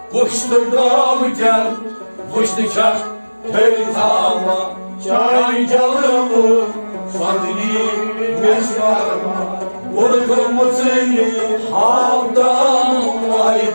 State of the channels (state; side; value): inverted; both; correlation -1.00